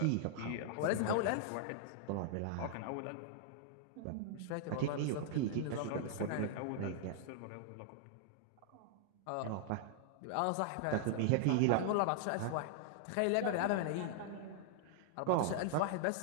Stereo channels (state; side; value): different; both; correlation -0.01